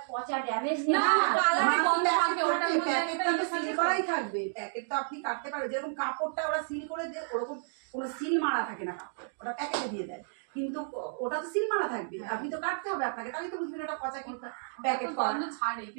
পচা ড্যামেজ না, কালারে আমার গন্ধ প্যাকেট থাকে, ওটার থাকে, মধ্যে প্যাকেটটা একটা তো ইয়ে সিল থাকে। করাই থাকবে। প্যাকেট তো আপনি কাটতে পারবেন, যেরকম কাপড়টা ওরা সিল করে দেয় ওরকম কোনো সিল মারা থাকে না কাপড়, ওটা প্যাকেটে দিয়ে দেয়, কিন্তু ওটা তো সিল মারা থাকবে, আপনি তো কাটতে হবে আপনাকে, তাহলে তো বুঝবেন ওটা পচা কি প্যাকেট করা। গন্ধ ছাড়ে, কি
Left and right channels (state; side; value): silent; left; digital silence